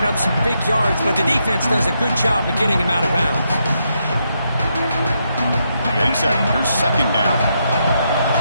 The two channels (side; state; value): both; inverted; correlation -0.80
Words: up some big yards, but the defense does a good job of getting him out of bounds. Getting set. Here's second down.